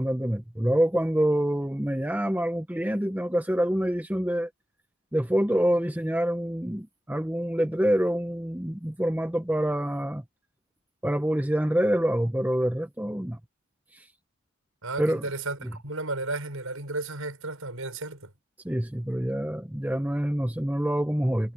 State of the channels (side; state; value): both; normal; correlation 0.91